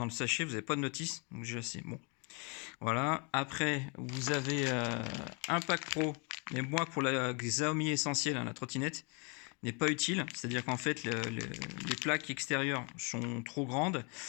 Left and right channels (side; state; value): right; quieter; 33.8 dB